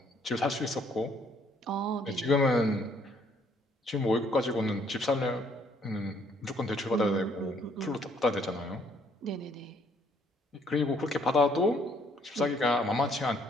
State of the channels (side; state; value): both; normal; correlation 0.66